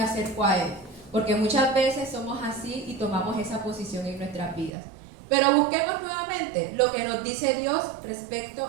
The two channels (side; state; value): left; drops out; at 4.7 s